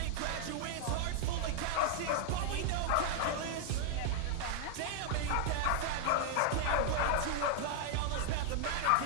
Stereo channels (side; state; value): both; different; correlation -0.01